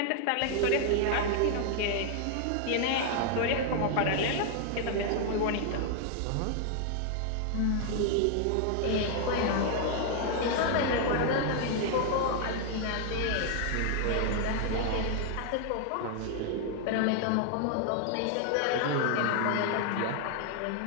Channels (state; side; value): different; both; correlation 0.00